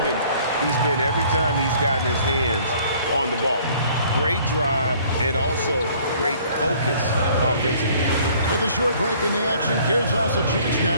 he's been every time he's gotten his hands on the ball. Great drive and also great focus offensively. With a short break in the action, gives us a chance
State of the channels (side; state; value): both; inverted; correlation -0.56